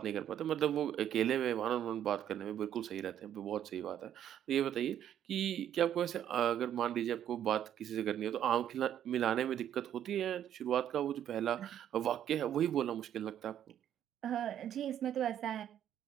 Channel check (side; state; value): left; quieter; 10.4 dB